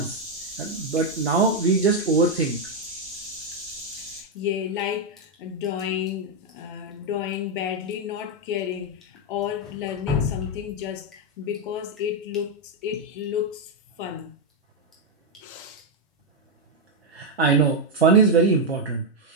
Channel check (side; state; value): both; normal; correlation 0.01